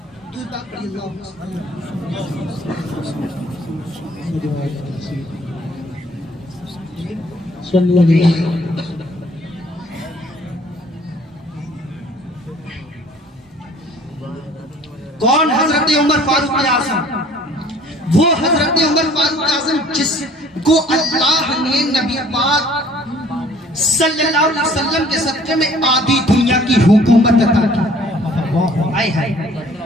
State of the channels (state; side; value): normal; both; correlation 0.55